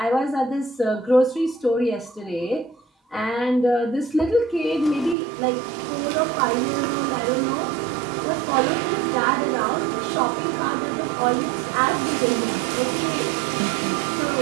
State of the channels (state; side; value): drops out; left; at 5.2 s